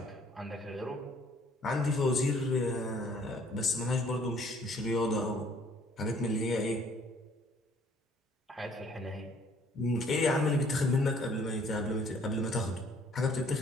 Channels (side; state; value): both; normal; correlation 0.59